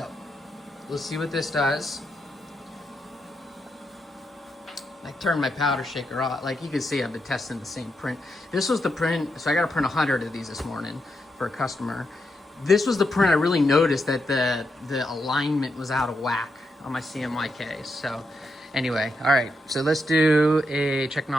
let's see what this does. I turned my powder shaker off. Like you can see, I've been testing the same print. This was the print, so I got to print 100 of these this morning for a customer. This was the print I really noticed that the alignment was out of whack on my CMYK. So anyway, all right, so let's do a check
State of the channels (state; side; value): normal; both; correlation 0.83